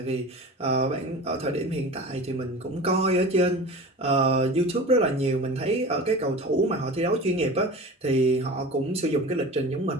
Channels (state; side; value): normal; both; correlation 0.34